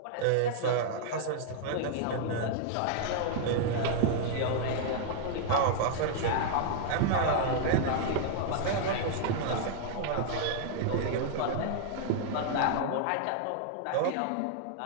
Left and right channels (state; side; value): different; both; correlation -0.01